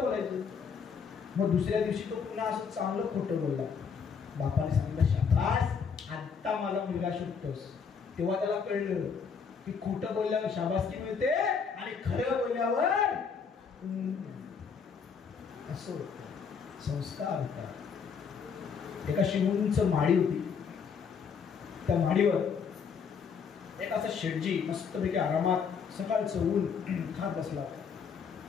बोलायचं. मग दुसऱ्या दिवशी तो पुन्हा असं चांगलं खोटं बोलला. बापाने सांगितलं, शाबास, आता मला मुलगा शोधतोस. तेव्हा त्याला कळलं की खोटं बोलल्यावर शाबासकी मिळते, आणि खरं बोलल्यावर असं होतं. संस्कार होता. एका शिवूंच माडी होती, त्या माडीवर एक असा शेठजी मस्तपैकी आरामात सकाळचं ऊन खात बसला होता.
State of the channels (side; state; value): right; quieter; 6.2 dB